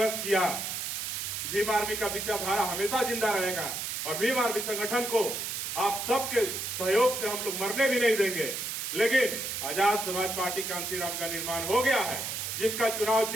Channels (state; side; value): noise; right; hiss, 4 dB below the sound